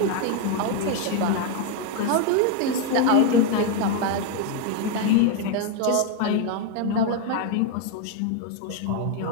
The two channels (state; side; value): different; both; correlation 0.01